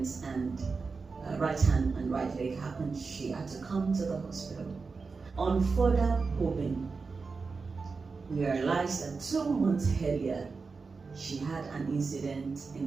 and right hand and right leg happened, she had to come to the hospital. On further probing, we realized that 2 months earlier, she had an incident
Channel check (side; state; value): left; quieter; 4.6 dB